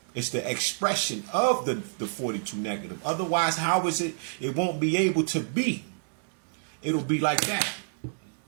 It's the expression of the 42 negative. Otherwise, how is it? It won't be able to be. It'll be like that.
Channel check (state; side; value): silent; left; digital silence